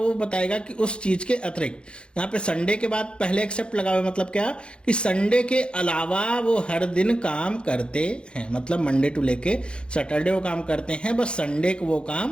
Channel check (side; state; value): right; late; 0.055 ms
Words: बताएगा कि उस चीज के अतिरिक्त। यहाँ पे संडे के बाद पहले एक्सेप्ट लगा हुआ, मतलब क्या कि संडे के अलावा वो हर दिन काम करते हैं। मतलब मंडे टू लेके सैटरडे वो काम करते हैं, बस संडे को वो